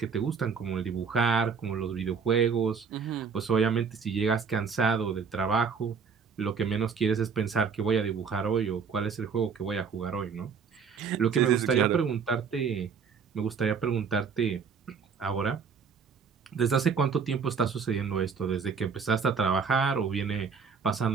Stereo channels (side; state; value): left; quieter; 6.0 dB